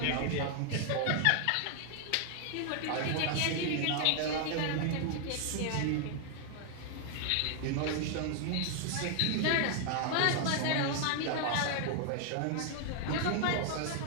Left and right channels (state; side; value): different; both; correlation 0.00